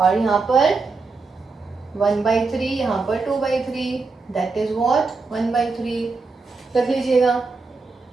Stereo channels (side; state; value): left; quieter; 4.1 dB